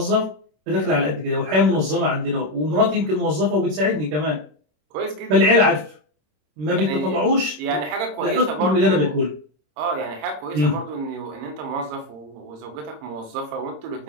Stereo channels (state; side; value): late; left; 27 ms